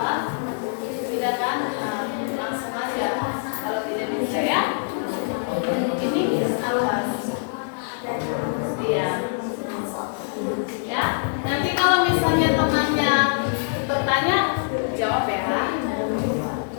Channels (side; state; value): right; silent; digital silence